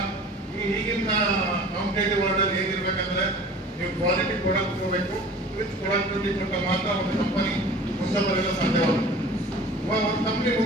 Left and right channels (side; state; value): both; normal; correlation 0.43